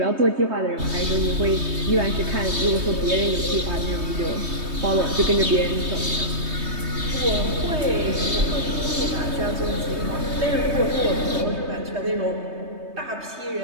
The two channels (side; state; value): left; late; 3.2 ms